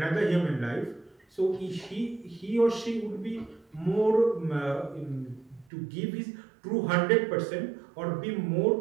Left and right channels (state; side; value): drops out; left; at 5.7 s